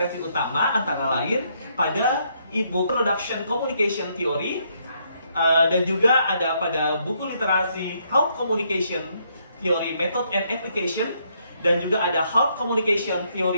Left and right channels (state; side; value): inverted; both; correlation -0.73